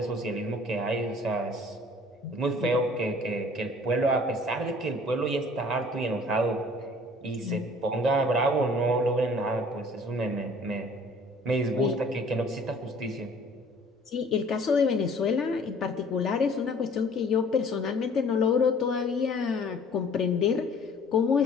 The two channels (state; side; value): normal; both; correlation 0.52